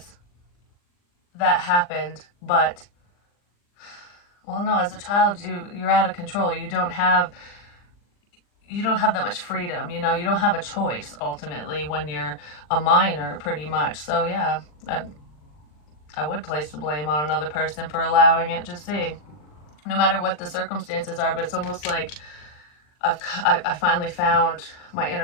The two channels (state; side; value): late; right; 40 ms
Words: that happened, but, well, no, as a child, you're out of control. You don't have that much freedom, you know. You don't have a choice ultimately when you're a minor, pretty much. So yeah, I would place the blame on another person for allowing it. Just see, no matter what the circumstances are. But it's almost like I finally found my